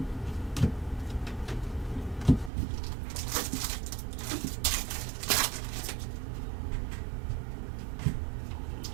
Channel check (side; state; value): left; drops out; at 2.5 s